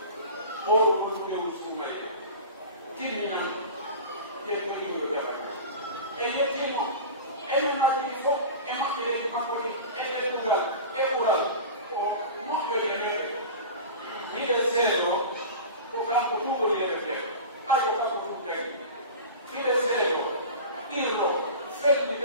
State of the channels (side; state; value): both; inverted; correlation -0.32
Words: هو المسلم السمي تلمنا يتكلم بذلك أيها تلمو أين ما تلفو أما إلى المحفظ أين تقول أولا ومحفظ إليه إذا سيدو وكان كتوب إليه ما يقال كتوب تاني إذا سيدو إلو